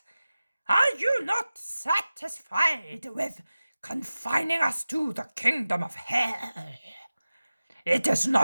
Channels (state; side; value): inverted; both; correlation -0.96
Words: Are you not satisfied with confining us to the kingdom of hell? It is